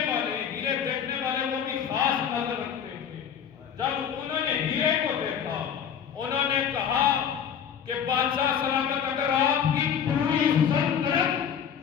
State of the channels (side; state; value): right; quieter; 8.2 dB